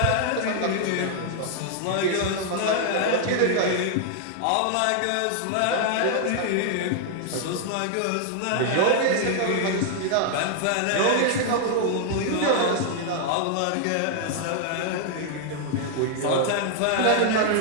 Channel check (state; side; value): different; both; correlation 0.00